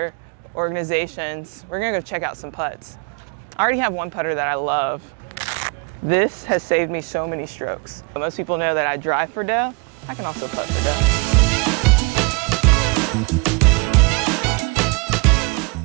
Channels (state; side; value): quieter; left; 30.3 dB